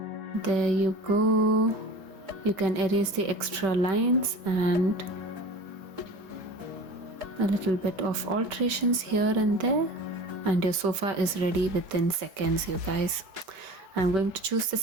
There you go. You can erase the extra lines and a little bit of alterations here and there, and your sofa is ready within seconds, you guys. I'm going to choose the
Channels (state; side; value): late; left; 5.2 ms